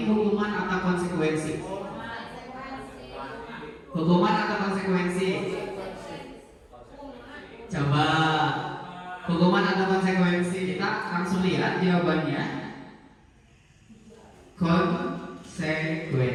hukuman atau konsekuensi? Hukuman atau konsekuensi? Coba hukuman atau konsekuensi, kita langsung lihat jawabannya.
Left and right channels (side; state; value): both; identical; correlation 1.00